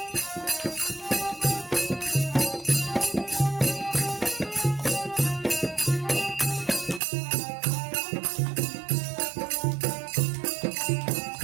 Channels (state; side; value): drops out; left; at 7.0 s